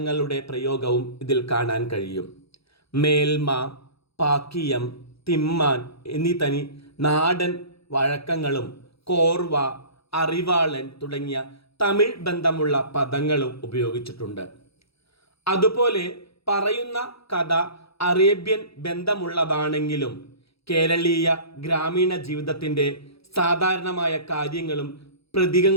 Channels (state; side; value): late; right; 0.77 ms